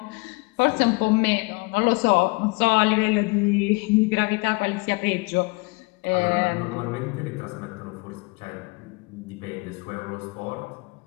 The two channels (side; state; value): right; quieter; 27.3 dB